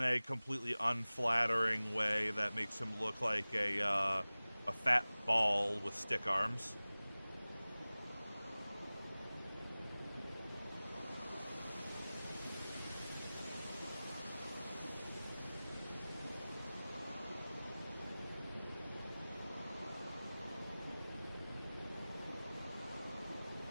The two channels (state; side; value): inverted; both; correlation -0.98